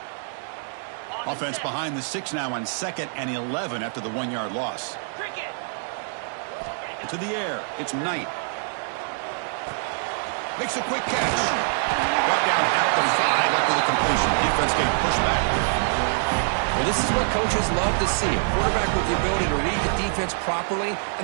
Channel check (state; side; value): silent; left; digital silence